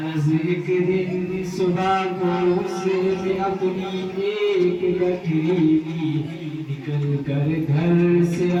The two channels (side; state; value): both; identical; correlation 1.00